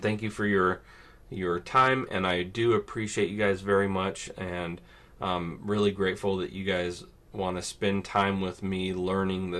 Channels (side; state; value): both; identical; correlation 1.00